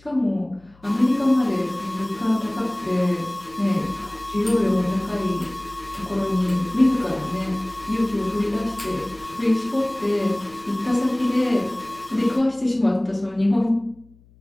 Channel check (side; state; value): left; noise; hum, 28 dB below the sound